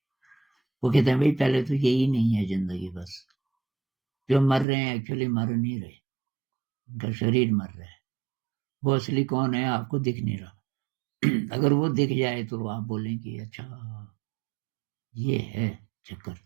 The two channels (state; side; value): drops out; left; at 4.7 s